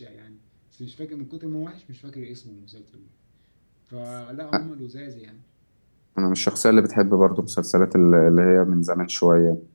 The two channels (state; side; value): inverted; both; correlation -1.00